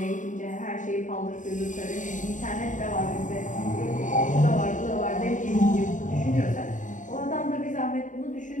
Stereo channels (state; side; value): late; right; 0.37 ms